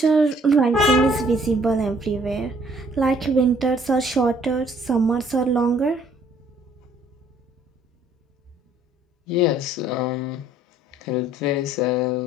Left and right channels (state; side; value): normal; both; correlation 0.60